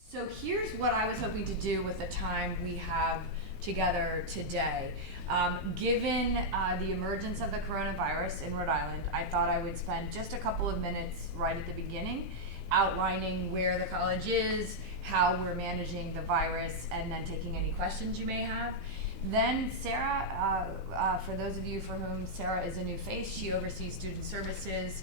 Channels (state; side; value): normal; both; correlation -0.04